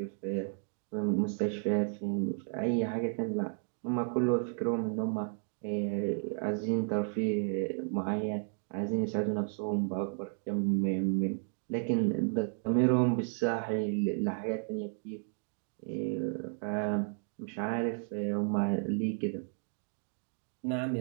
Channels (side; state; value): left; silent; 56 dB below the other